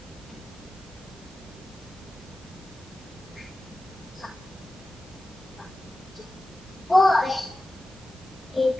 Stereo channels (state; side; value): normal; both; correlation 0.94